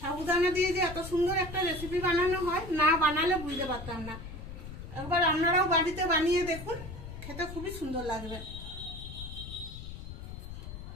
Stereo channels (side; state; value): left; noise; rumble, 10 dB below the sound